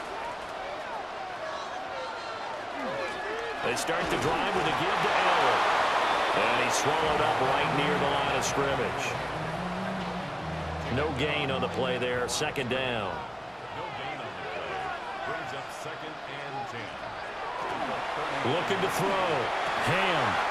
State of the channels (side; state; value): both; identical; correlation 1.00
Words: They start the drive with a give to Allen. And he's swallowed up right near the line of scrimmage. No gain on the play there. 2nd down. No gain on the play. Brings up 2nd and 10. Looking to throw. Ham.